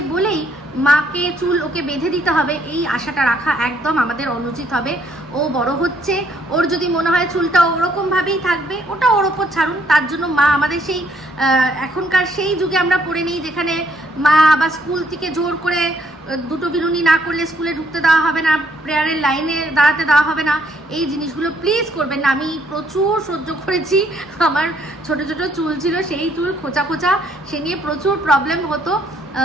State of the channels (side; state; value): both; normal; correlation 0.68